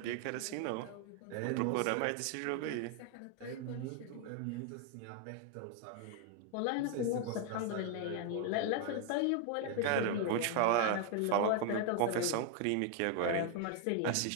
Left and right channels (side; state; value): both; different; correlation 0.00